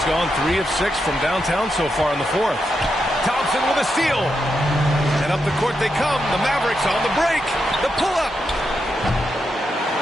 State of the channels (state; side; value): normal; both; correlation 0.84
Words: gone 3 of 6 from downtown so far in the fourth. Thompson with a steal. And up the court they come. The Mavericks on the break. The pull-up.